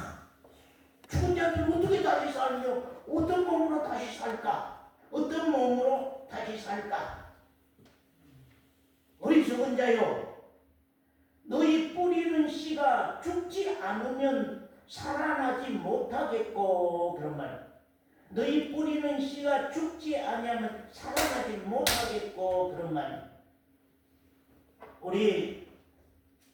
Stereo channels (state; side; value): identical; both; correlation 1.00